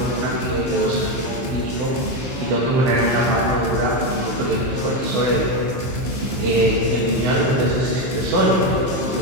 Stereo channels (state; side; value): late; left; 15 ms